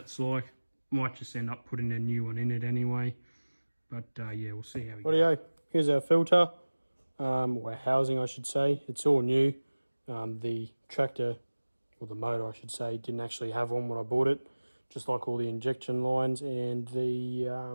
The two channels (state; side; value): inverted; both; correlation -1.00